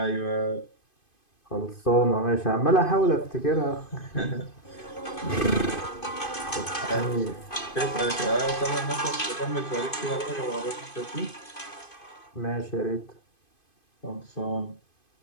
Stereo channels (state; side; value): late; right; 2.5 ms